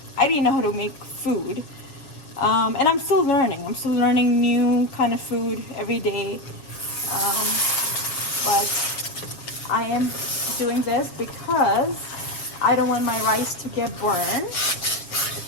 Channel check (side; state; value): right; late; 7.3 ms